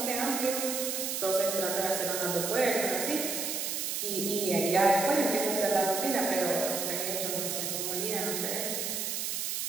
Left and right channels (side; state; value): right; noise; hiss, 2 dB below the sound